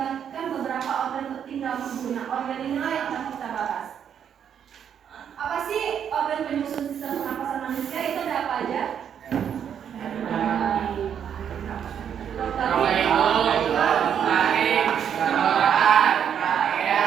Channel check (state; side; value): quieter; left; 8.5 dB